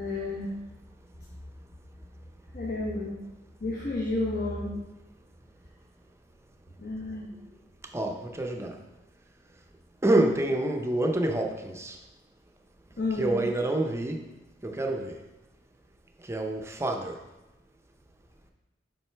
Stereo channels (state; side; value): normal; both; correlation 0.75